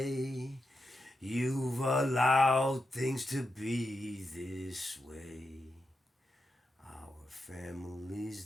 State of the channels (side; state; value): both; normal; correlation 0.87